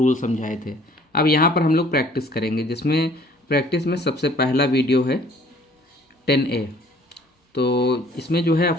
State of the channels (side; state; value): both; normal; correlation 0.55